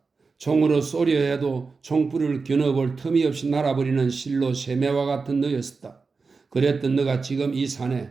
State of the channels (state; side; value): quieter; left; 4.5 dB